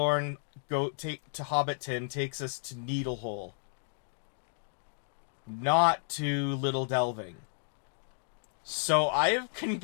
to Hobbiton takes us to Needlehole, not to Little Delving. So I have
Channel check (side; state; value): right; silent; digital silence